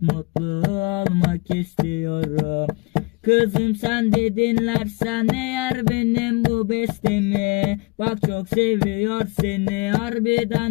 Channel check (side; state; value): right; quieter; 27.7 dB